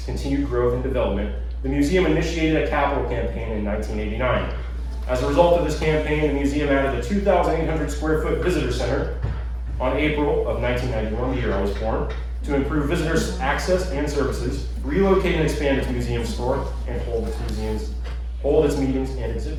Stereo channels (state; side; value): identical; both; correlation 1.00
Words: continued growth and development, the museum initiated a capital campaign in 1989. As a result of this campaign, the museum added a 2,800 square foot visitor center on April of 1991, the year I was born, to improve visitors' access and services, relocate and expand its museum store, and hold its meetings and